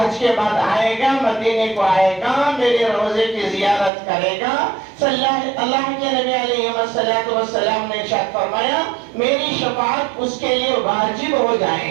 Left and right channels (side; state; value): left; drops out; at 3.9 s